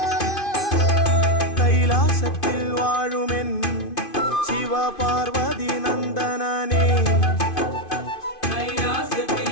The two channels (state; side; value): late; right; 2.5 ms